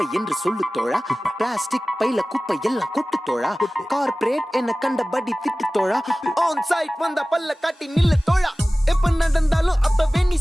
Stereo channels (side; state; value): both; normal; correlation 0.97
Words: என்று சொல்லு தோழா, plastic பைல குப்பை எல்லாம் கொட்டு தோழா, corporate என்ன கண்டபடி திட்டு தோழா, ஆன் சைட் வந்த பல்ல காட்டி நில்லு தோழா, எப்ப நடந்தாலும் அப்பவே நீ